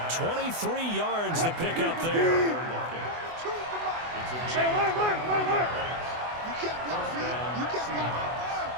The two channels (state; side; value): late; left; 24 ms